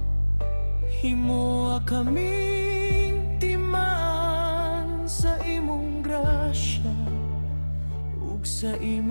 Himoa kaming timaan sa imong grasya ug sa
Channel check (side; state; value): both; inverted; correlation -1.00